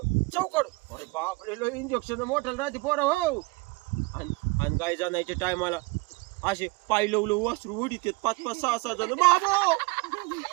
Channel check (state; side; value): quieter; left; 24.9 dB